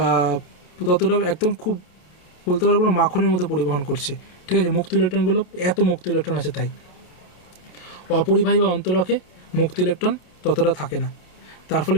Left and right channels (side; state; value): right; late; 28 ms